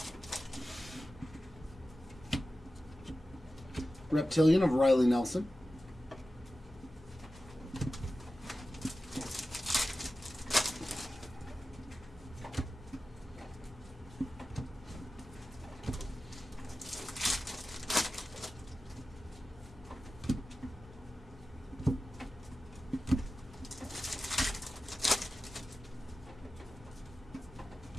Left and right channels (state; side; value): normal; both; correlation 0.94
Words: Reptilian of Riley Nelson.